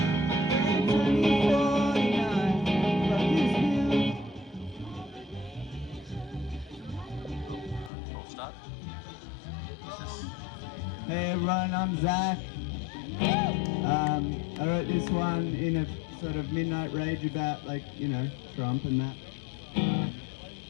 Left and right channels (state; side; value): drops out; right; at 7.9 s